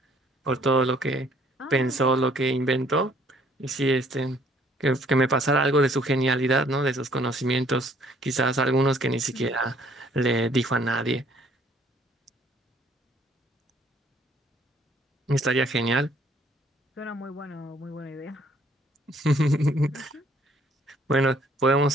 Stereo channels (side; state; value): both; normal; correlation 0.62